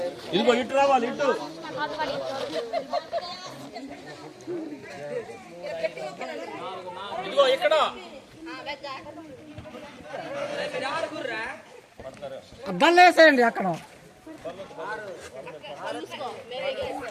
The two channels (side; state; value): both; identical; correlation 1.00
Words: ఇదిగో ఇటు రావాలి, ఇటు. ఇదిగో ఇక్కడ అద్దాలు వేసేయండి అక్కడ.